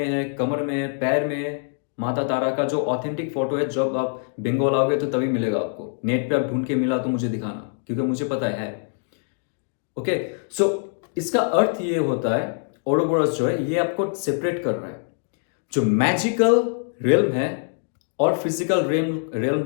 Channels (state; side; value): silent; right; digital silence